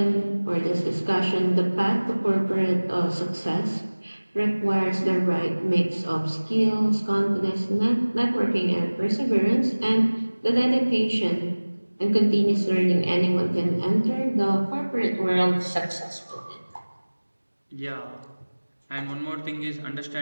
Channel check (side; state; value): both; inverted; correlation -1.00